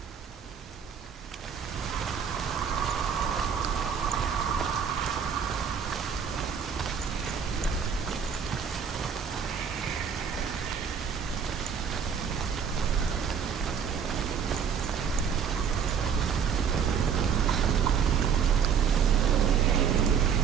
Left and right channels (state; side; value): quieter; left; 7.2 dB